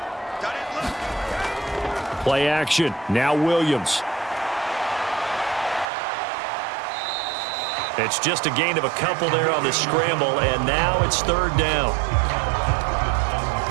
Play action. Now Williams. It's just a gain of a couple there on the scramble, and now it's 3rd down.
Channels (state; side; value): drops out; left; at 5.9 s